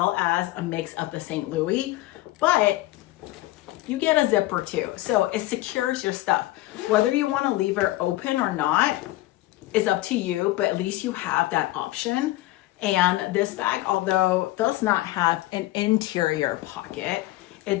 as a mix of the St. Louis, but you get a zipper too. So it secures your stuff. Whether you want to leave it open or not is up to you, but at least you have that option. And this bag, although does not have an interior pocket,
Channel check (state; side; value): quieter; right; 17.5 dB